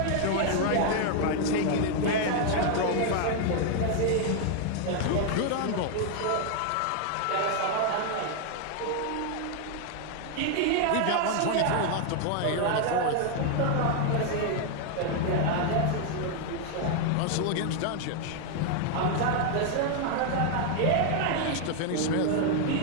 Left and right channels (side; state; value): both; different; correlation 0.00